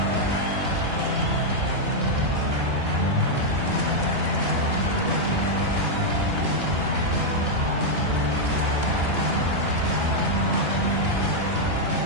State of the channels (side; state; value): left; late; 2.9 ms